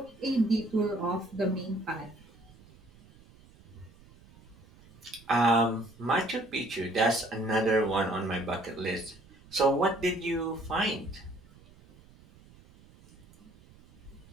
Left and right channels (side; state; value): right; noise; rumble, 25 dB below the sound